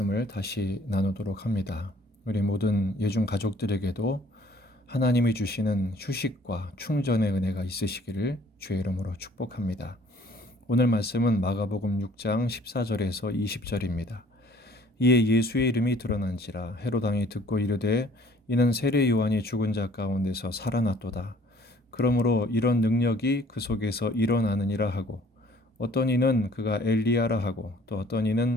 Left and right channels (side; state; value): both; normal; correlation 0.56